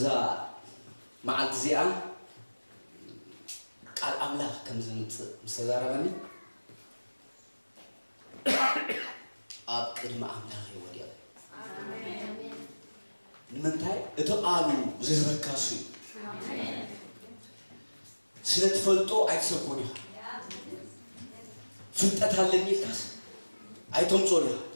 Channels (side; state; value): both; inverted; correlation -1.00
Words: ማዓልት ዚኣ ቃል አምላክ ከምዝምጽ ምሰዛረበኒ ኣብ ቅድመ አምላክ ይወድያ አሜን ንምንታይ እቶ ቃሉ ዝዝበካሱ አሜን ስለተፈልጦ አይተሰኮኒ ፍልጠት አለኝ ካስ አይቶም ጾሪ